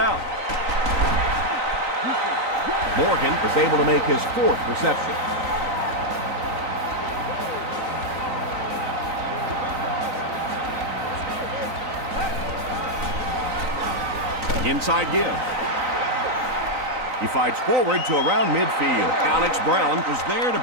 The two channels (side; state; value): left; late; 3.9 ms